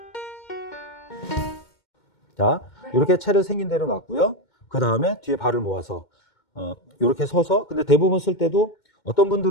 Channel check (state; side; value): late; right; 2.2 ms